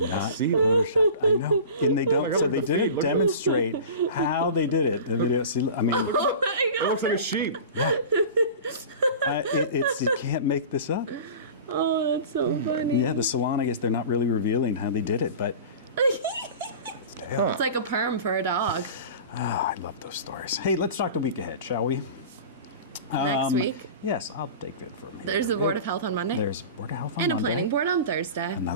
not sea. photoshopped. I know, and they don't. God, So look they at the feet, didn't look at demonstrate how they did it. The video. See, I mean, Oh my It god! looks like a sheep. you can't make this up. Oh, that's so funny. Yeah, the salon. I guess they're not really revealing how they did it, but It's like a perm for a dog. I love those stories. Hey, let's talk the week ahead, shall we? Next week, Yes, I'll take it from here. there's the Board of Health on Monday. There's Board of Health on and a Monday. planning board on Thursday.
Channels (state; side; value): inverted; both; correlation -0.36